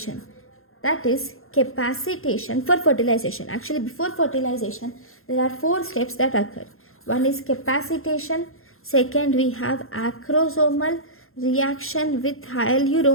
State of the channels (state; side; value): late; right; 0.61 ms